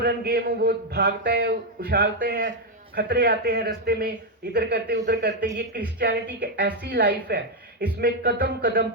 गेम, वो भागते हैं, उछालते हैं, खतरे आते हैं रास्ते में, इधर करते उधर करते। ये क्रिश्चियनिटी की ऐसी लाइफ है, इसमें कदम कदम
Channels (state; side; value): normal; both; correlation 0.02